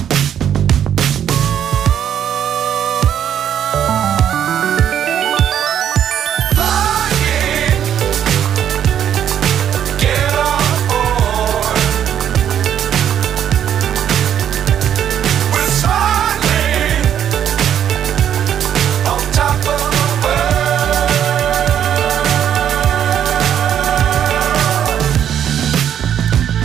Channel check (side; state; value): left; quieter; 9.6 dB